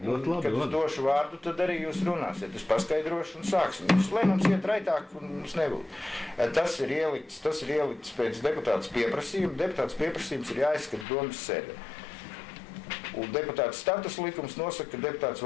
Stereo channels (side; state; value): right; drops out; at 11.1 s